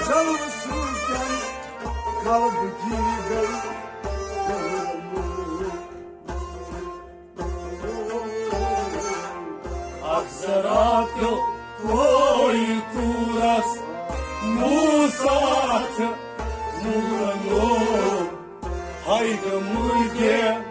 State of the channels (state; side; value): identical; both; correlation 1.00